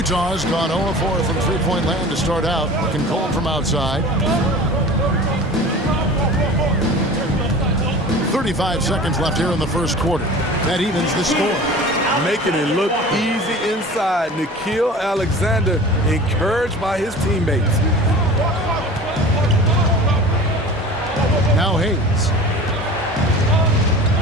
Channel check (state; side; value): normal; both; correlation 0.39